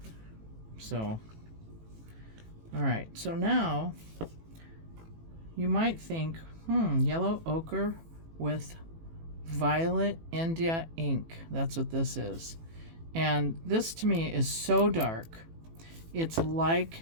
So, alright, so now you might think, yellow ochre with violet India ink. That's what this is. And this to me is so dark. It's like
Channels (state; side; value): late; left; 18 ms